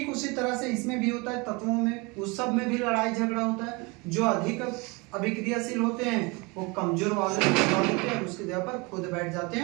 उसी तरह से इसमें भी होता है, तत्वों में, उस सब में भी लड़ाई झगड़ा होता है। जो अधिक अभिक्रियाशील होते हैं वो कमजोर वाले होते हैं, उसके जगह पर खुद बैठ जाते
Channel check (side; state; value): left; quieter; 27.4 dB